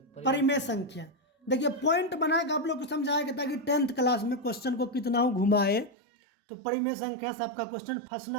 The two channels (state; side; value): drops out; left; at 5.9 s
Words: परिमेय संख्या। देखिए पॉइंट बना के आप लोग को समझाएगा ताकि 10th क्लास में क्वेश्चन को कितना हो घुमाए तो परिमेय संख्या से आपका क्वेश्चन